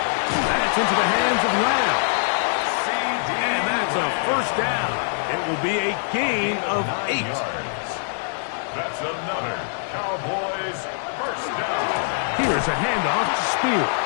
That's into the hands of Lamb. And that's a first down. It will be a gain of 8. That's another Cowboys first down. Here's a handoff to Spears.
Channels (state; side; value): silent; right; digital silence